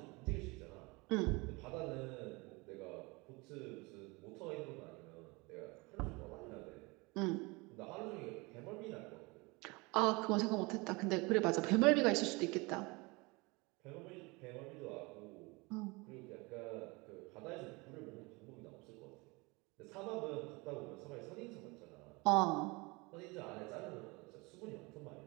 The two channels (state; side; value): quieter; left; 25.8 dB